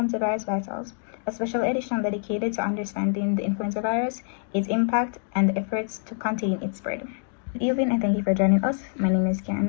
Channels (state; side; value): silent; right; 61 dB below the other